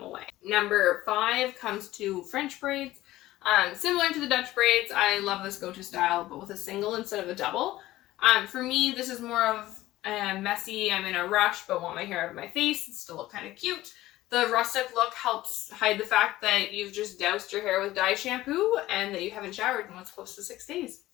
away. Number 5 comes to French braids. Similar to the Dutch braids, I love this go-to style, but with a single instead of a double. For me, this is more of messy, I'm in a rush but want my hair out of my face and still look kind of cute. The rustic look helps hide the fact that you've just doused your hair with dye shampoo and that you haven't showered in what's close to 6 days.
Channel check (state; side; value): quieter; right; 16.3 dB